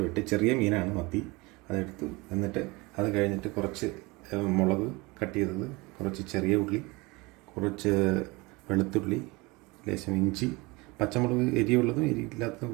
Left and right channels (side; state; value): left; quieter; 24.4 dB